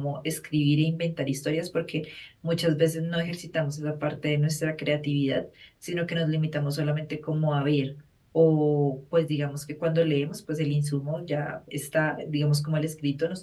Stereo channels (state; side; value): identical; both; correlation 1.00